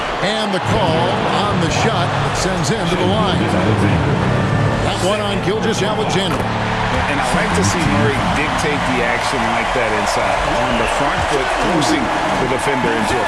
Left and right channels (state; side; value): identical; both; correlation 1.00